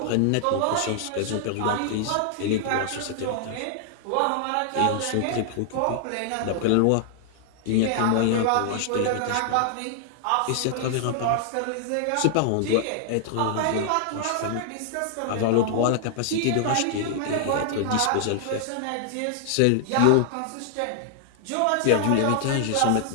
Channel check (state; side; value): different; both; correlation 0.00